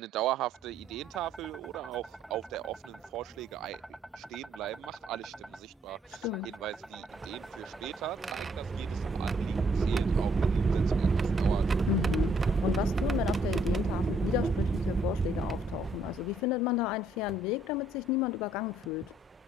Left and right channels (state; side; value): normal; both; correlation 0.68